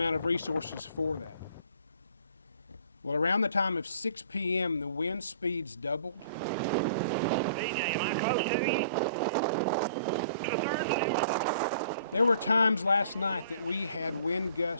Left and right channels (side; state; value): both; inverted; correlation -0.55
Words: of resources for that. Well, around the time of 6 p.m., the wind speeds doubled. DJ, am I close to you? There were times last night that we had wind